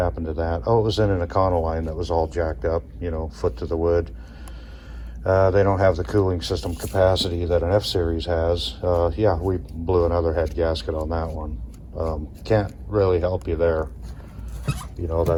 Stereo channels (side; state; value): both; identical; correlation 1.00